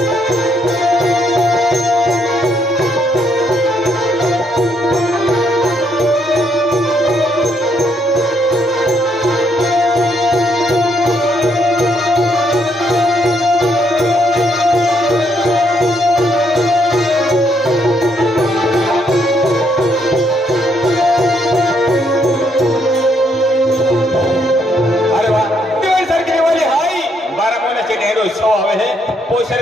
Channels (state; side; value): normal; both; correlation 0.73